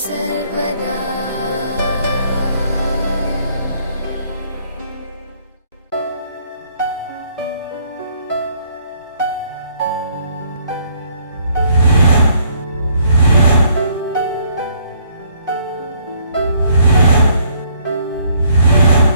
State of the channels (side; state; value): both; inverted; correlation -0.65